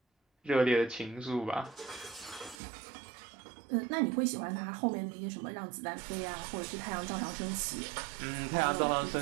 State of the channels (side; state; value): left; drops out; at 2.6 s